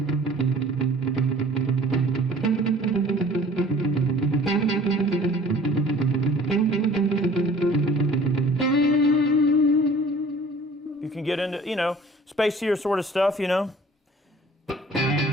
You can get into, spacier sort of stuff, You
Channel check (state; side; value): normal; both; correlation 0.50